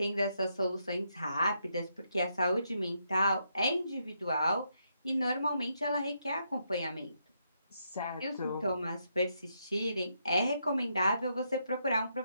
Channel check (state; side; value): inverted; both; correlation -0.79